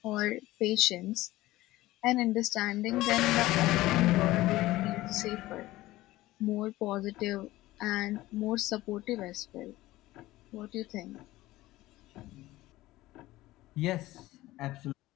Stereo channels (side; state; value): right; quieter; 17.3 dB